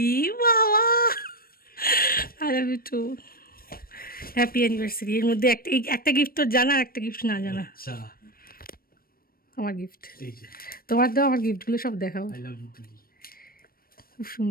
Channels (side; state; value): right; late; 0.43 ms